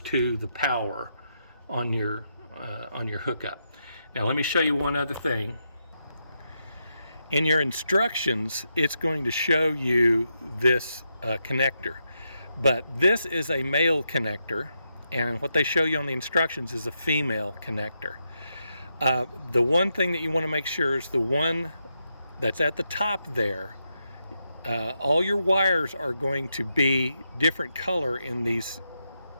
to the power on your hookup. Now let me show you one other thing. In your instructions, it's going to show you this connector, but this is a male connector, and what they show you on the instructions is a female connector. The one thing that you want to make sure is the one that's at the top there. All your wires are going to be different color in these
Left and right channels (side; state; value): both; inverted; correlation -0.83